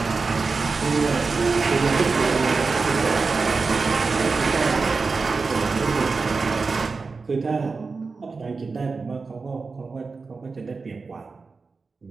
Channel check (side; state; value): left; quieter; 4.4 dB